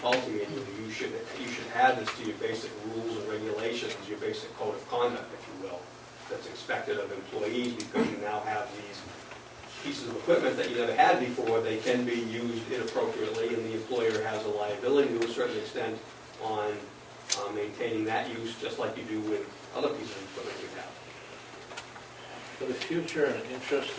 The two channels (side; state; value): both; identical; correlation 1.00